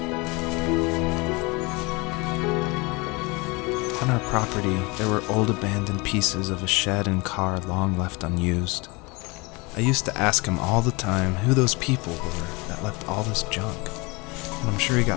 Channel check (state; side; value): quieter; right; 26.3 dB